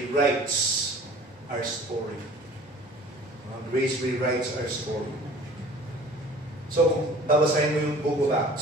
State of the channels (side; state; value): both; normal; correlation 0.47